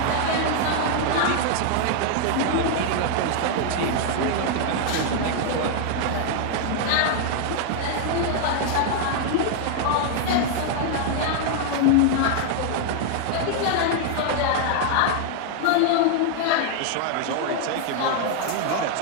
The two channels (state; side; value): different; both; correlation 0.00